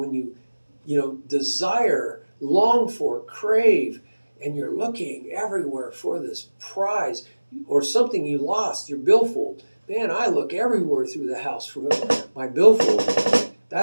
you desire, long for, crave, and you're looking everywhere for this prize or something you lost, your billfold. Man, I look everywhere through the house for my billfold.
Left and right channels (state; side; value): inverted; both; correlation -1.00